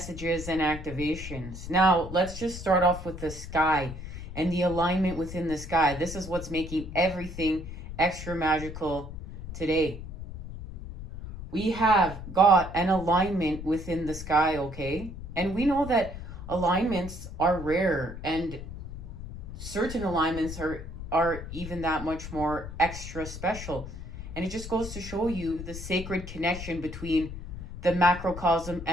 and activations. Now, let's just start off with the sky and the alignment within the sky. This is what's making everything extra magical today. We have got an alignment within the sky, okay? And we know that alignments are rare, and certain alignments are even that much more extra special. And it just goes to show you the sacred connection between the macrocosm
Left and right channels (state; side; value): noise; left; rumble, 10 dB below the sound